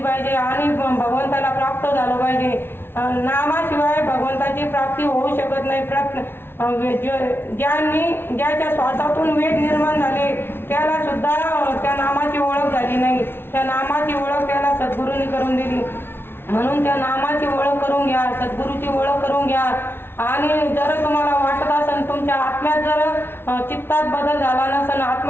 आणि भगवंताला प्राप्त झालं पाहिजे. नामाशिवाय भगवंताची प्राप्ती होऊ शकत नाही. ज्याच्या श्वासातून वेद निर्माण झाले त्याला सुद्धा त्या नामाची ओळख झाली नाही. त्या नामाची ओळख त्याला सद्गुरूंनी करून दिली. म्हणून त्या नामाची ओळख करून घ्या, सद्गुरूची ओळख करून घ्या. आणि जर तुम्हाला वाटत असेल तुमच्या आत्म्यात जर चित्तात बदल झाला नसेल,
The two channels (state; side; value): late; right; 0.11 ms